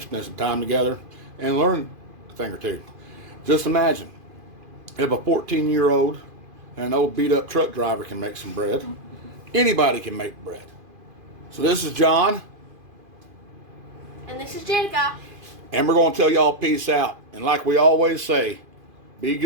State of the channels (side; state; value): left; late; 2.5 ms